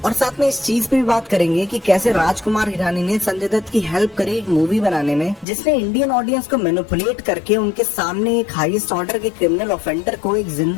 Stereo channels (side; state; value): right; drops out; at 5.5 s